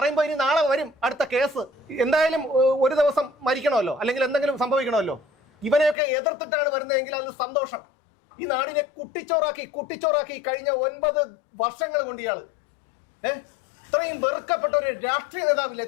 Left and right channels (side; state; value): right; drops out; at 6.0 s